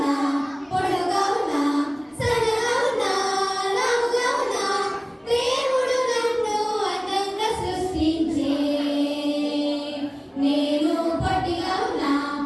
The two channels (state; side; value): identical; both; correlation 1.00